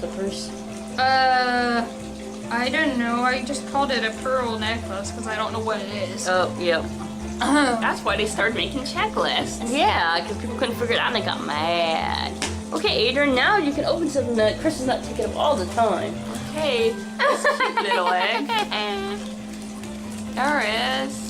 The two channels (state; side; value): identical; both; correlation 1.00